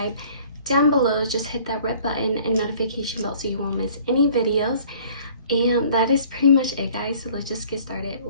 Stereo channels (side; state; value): both; inverted; correlation -0.53